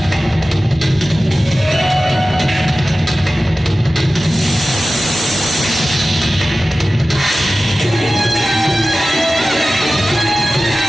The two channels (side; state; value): both; normal; correlation 0.96